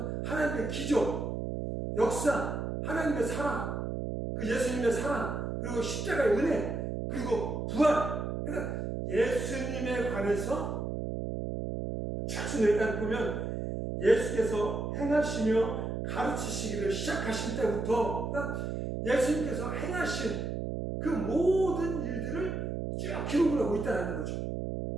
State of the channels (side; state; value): right; noise; hum, 3 dB below the sound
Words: 하나님의 기적, 역사, 하나님의 사랑, 그 예수님의 사랑, 그리고 십자가의 은혜, 그리고 부활. 그러니까 예수님에 관해서 차츰 일단 보면 예수께서 행하시며 가르치시기를 시작하신 때부터 예수님께서 행하신 그 모든 일들을 쭉 기록을 하고 있다는 거죠.